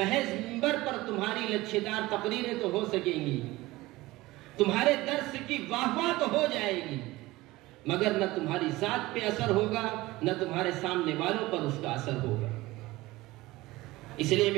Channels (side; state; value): left; quieter; 19.2 dB